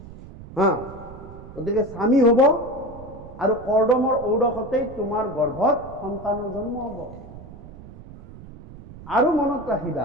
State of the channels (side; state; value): right; noise; rumble, 16 dB below the sound